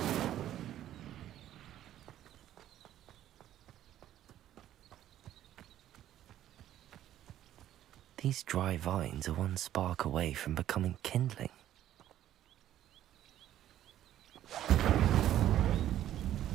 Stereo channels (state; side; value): quieter; left; 12.2 dB